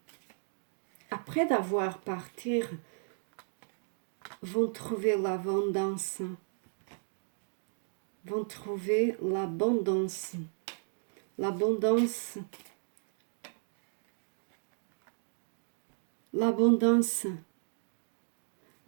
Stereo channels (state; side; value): silent; left; digital silence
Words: après d'avoir parti, vont trouver l'abondance. Vont trouver l'abondance. L'abondance. L'abondance.